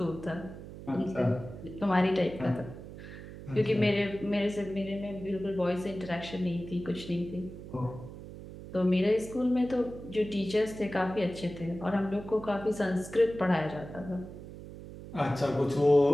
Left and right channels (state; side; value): noise; right; hum, 13 dB below the sound